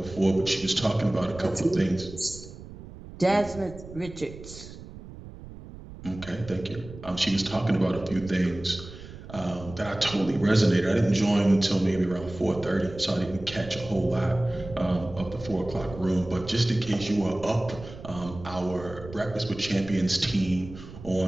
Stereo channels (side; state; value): right; noise; rumble, 15 dB below the sound